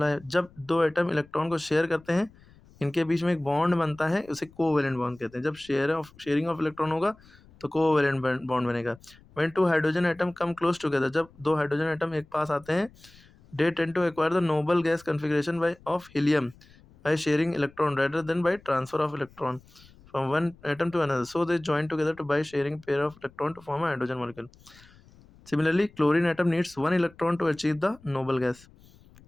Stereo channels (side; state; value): left; noise; rumble, 26 dB below the sound